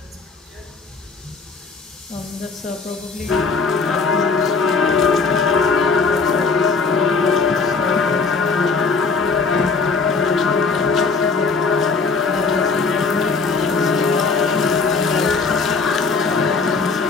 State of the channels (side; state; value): right; quieter; 4.6 dB